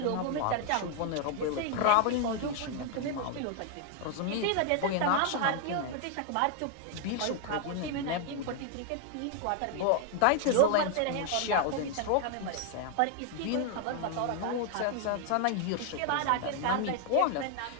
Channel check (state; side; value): different; both; correlation 0.00